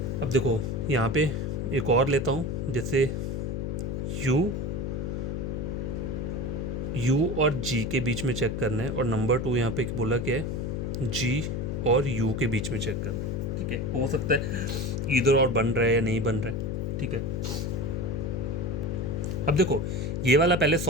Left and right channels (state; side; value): noise; left; hum, 2 dB below the sound